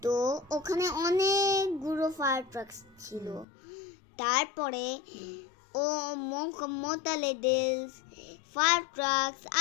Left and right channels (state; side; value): drops out; right; at 3.5 s